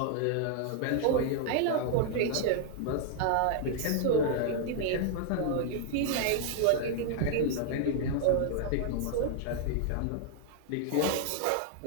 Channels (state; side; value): different; both; correlation 0.00